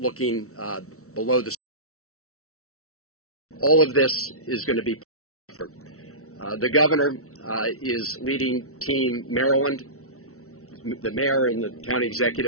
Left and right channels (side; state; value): right; late; 0.64 ms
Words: looking below the. All of this is going to be. The governor is leading Team Maryland. The mayor and the county